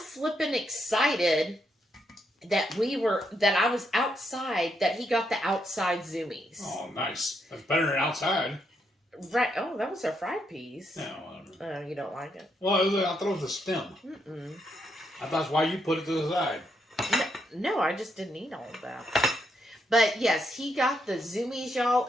excited that I was outside, that he got the outside zoomies. Oh, nice. That's better than outside. Right. Oh, that was our fried peas. Yeah, whatever. You don't like it? Well, I thought it was a stem. I thought that's why you put it to the side. No, I just didn't eat all of that. But yes, he got the zoomies, y'all.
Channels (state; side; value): normal; both; correlation 0.79